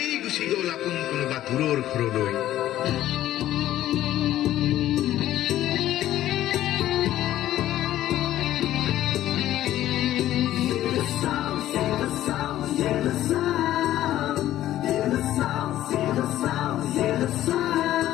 গুচি গল আপোন কোনোবা দূৰৰ ঘৰলৈ।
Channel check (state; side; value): quieter; right; 13.4 dB